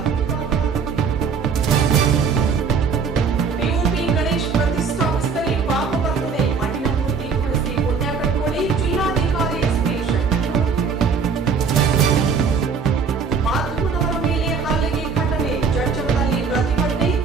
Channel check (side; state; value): left; quieter; 5.6 dB